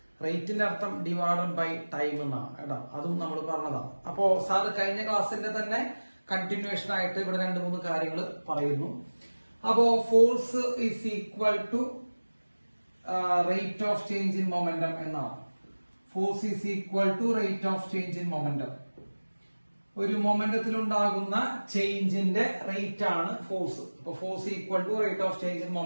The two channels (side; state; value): both; inverted; correlation -1.00